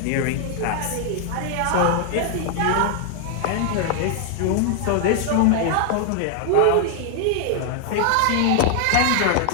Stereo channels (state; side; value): different; both; correlation 0.00